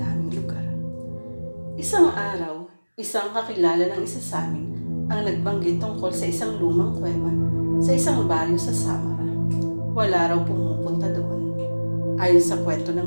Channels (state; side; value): inverted; both; correlation -1.00